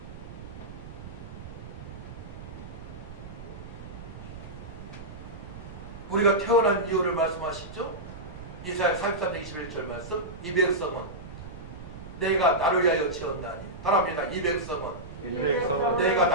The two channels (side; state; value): right; noise; rumble, 13 dB below the sound